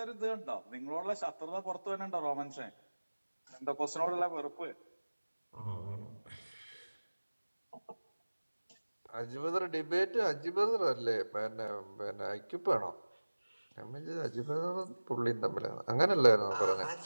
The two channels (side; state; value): both; inverted; correlation -1.00